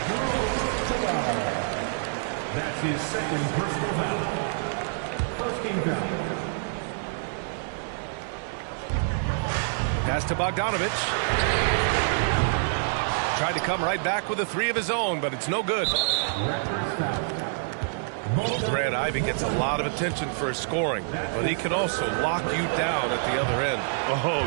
That's his second personal foul. First team foul. Pass to Bogdanovich. Tried to come right back with a 3 of his own, but it's no good. Raptors foul. Grant Ivey gets a lot of attention for his scoring, but he can also lock you down at the other end.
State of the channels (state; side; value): silent; left; 60 dB below the other